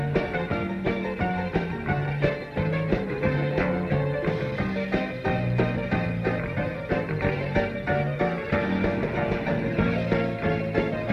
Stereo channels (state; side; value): identical; both; correlation 1.00